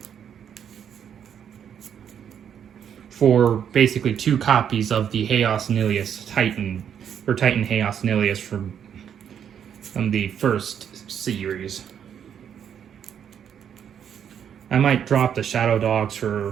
For basically 2 copies of the Chaos Nilius Titan, or Titan Chaos Nilius from the first series. I might drop the Shadow Dogs for,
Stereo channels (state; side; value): quieter; left; 8.5 dB